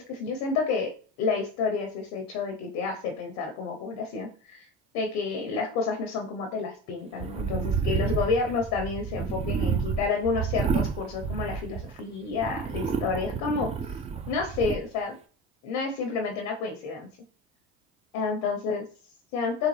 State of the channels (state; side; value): normal; both; correlation 0.29